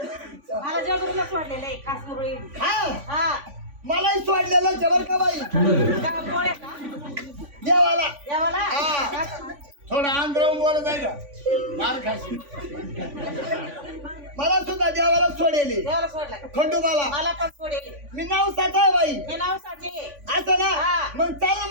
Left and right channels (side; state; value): left; late; 3.5 ms